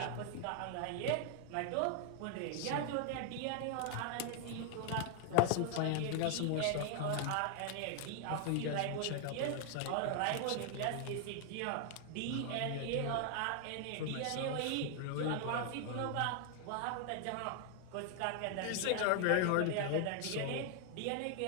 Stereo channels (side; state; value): both; different; correlation 0.00